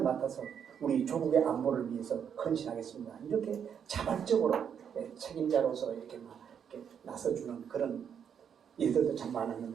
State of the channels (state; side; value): quieter; left; 7.9 dB